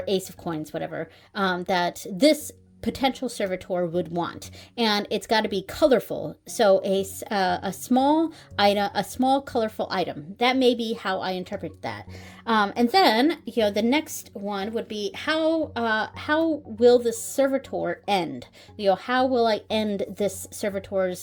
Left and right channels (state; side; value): identical; both; correlation 1.00